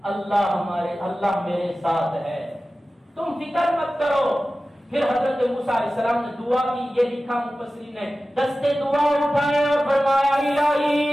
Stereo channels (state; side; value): normal; both; correlation 0.95